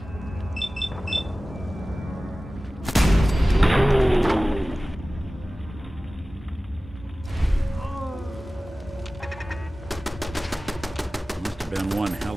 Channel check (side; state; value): both; normal; correlation 0.97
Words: Must have been one hell